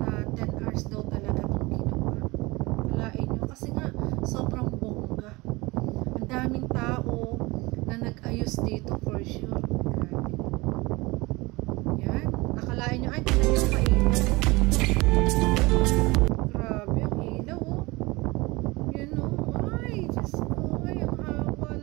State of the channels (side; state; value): left; quieter; 23.1 dB